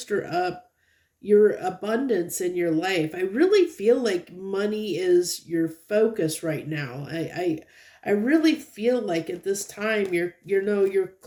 up your abundance in your life. I really feel like money is your focus right now. I really feel like at this time you're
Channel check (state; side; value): identical; both; correlation 1.00